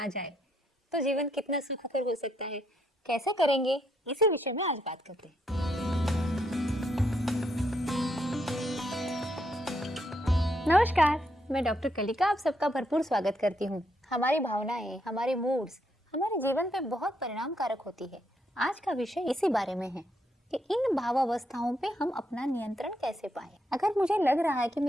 जाए तो जीवन कितना सुखकर हो सकता है। कैसे करेंगे, इसी विषय में आज बात करते हैं। नमस्कार, मैं डॉक्टर कलिका आप सबका भरपूर स्वागत करती हूँ। हमारी भावनाएं, हमारे मूड्स हमारे जीवन पे बहुत परिणामकारक होती है। आज का विषय इसी बारे में है कि इन भावावस्थाओं पे हम अपना नियंत्रण कैसे पाएं। अगर मुझे लग रहा है कि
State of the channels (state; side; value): normal; both; correlation 0.76